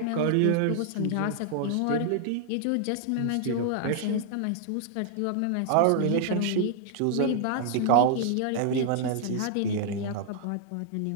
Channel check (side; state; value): both; different; correlation -0.01